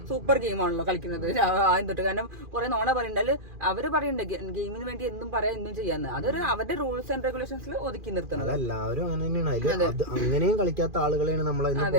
സൂപ്പർ ഗെയിമാണല്ലോ കളിക്കുന്നത് ആദ്യം തൊട്ട്. കാരണം കുറെ നോണ പറയണ്ടല്ലോ. അവര് പറയണ്ട ഗെയിമിന് വേണ്ടി എന്തും പറയാം എന്തും ചെയ്യാന്ന്. അതൊരു അവരുടെ റൂൾസ് ആൻഡ് റെഗുലേഷൻസിൽ ഒതുക്കി നിർത്തുന്നത്. എല്ലാവരും അങ്ങനെ തന്നെയാണ്. അങ്ങനെയും കളിക്കാത്ത ആളുകളെയാണ് നമ്മളെ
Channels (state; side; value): late; left; 2.4 ms